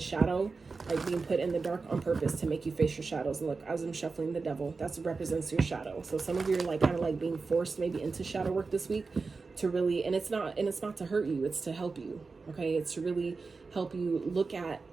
like being put in the dark on purpose to make you face your shadows. And look, as I'm shuffling the devil, that represents your shadow. So some of you are like kind of like being forced maybe into shadow work this week to really, and it's not to hurt you, it's to help you. Okay, it's to really help you look at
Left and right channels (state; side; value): quieter; left; 4.3 dB